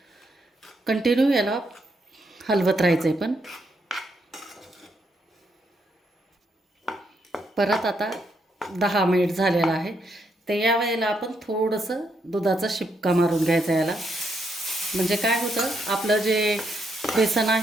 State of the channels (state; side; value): normal; both; correlation 0.78